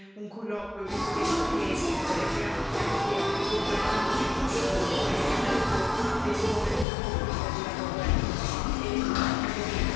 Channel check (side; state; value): right; drops out; at 6.9 s